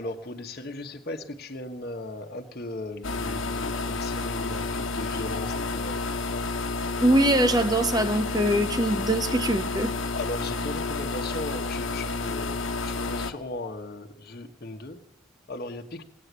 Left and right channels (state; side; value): normal; both; correlation 0.49